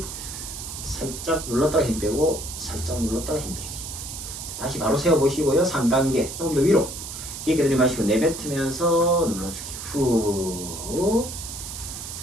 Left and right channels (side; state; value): right; noise; hiss, 9 dB below the sound